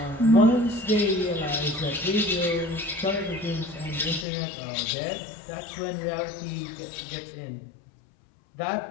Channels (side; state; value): right; drops out; at 4.2 s